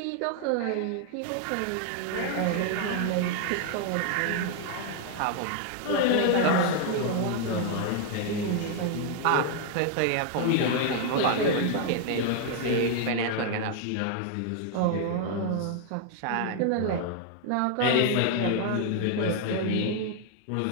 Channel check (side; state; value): both; different; correlation 0.00